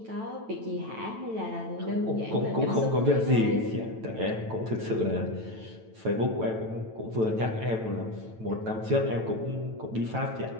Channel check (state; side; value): late; left; 9.1 ms